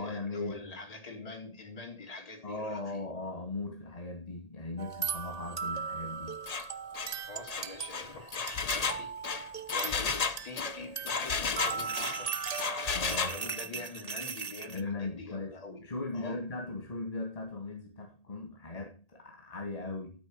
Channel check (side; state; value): right; late; 1.8 ms